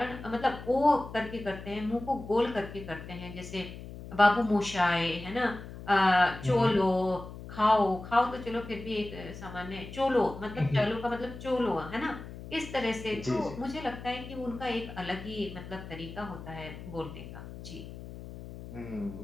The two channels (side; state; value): left; noise; hum, 12 dB below the sound